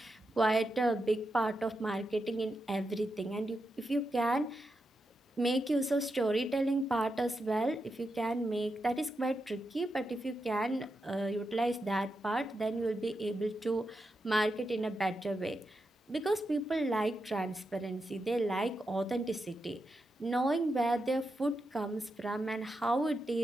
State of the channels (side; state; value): both; normal; correlation 0.87